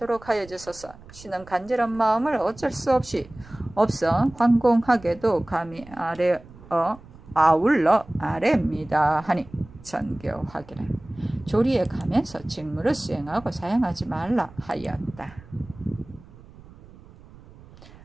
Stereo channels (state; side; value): noise; right; rumble, 21 dB below the sound